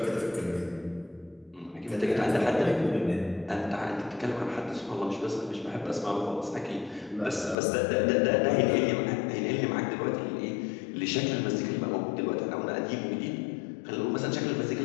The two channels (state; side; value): drops out; right; at 7.6 s